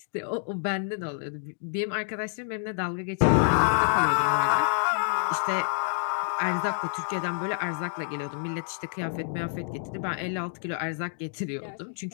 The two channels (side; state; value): right; silent; 59 dB below the other